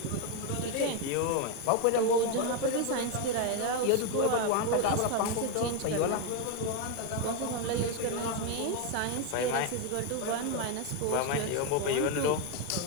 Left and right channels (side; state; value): both; different; correlation 0.02